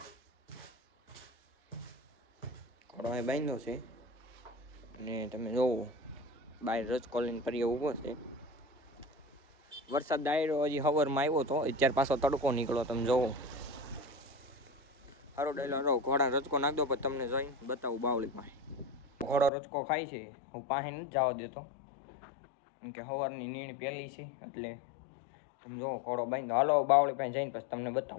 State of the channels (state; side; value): drops out; right; at 19.5 s